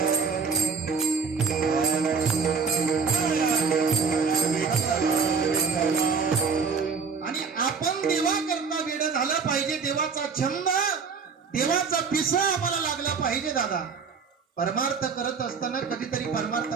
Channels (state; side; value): quieter; left; 5.4 dB